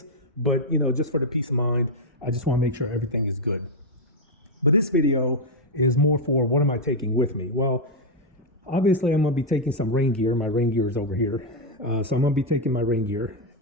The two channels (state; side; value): normal; both; correlation 0.01